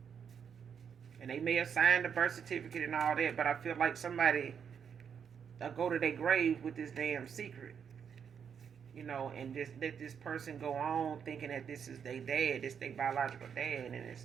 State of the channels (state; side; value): quieter; left; 7.4 dB